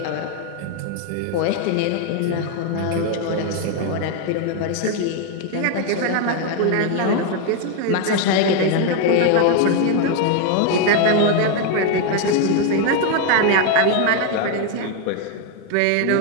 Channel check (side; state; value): both; different; correlation 0.01